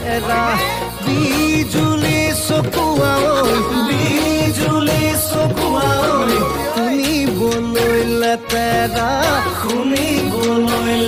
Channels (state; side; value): identical; both; correlation 1.00